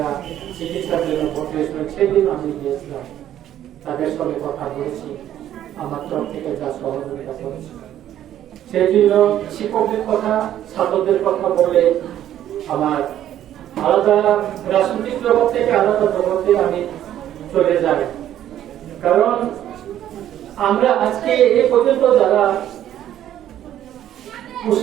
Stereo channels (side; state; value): left; quieter; 11.6 dB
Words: চিকিৎসার জন্য ভর্তি হয়েছিলেন, সেদিন আমি গিয়েছিলাম। তাদের সঙ্গে কথা বলেছি, আমার তরফ থেকে যা সহযোগিতা করেছি। সেই জন্য শিক্ষকদের কথা, ছাত্রদের কথা বলে আমার আলাদা রাজনৈতিক জগৎ থেকে আলাদা জগতে আমি চলে যাই। কারণ আমরা আজকে এই পর্যন্ত যারা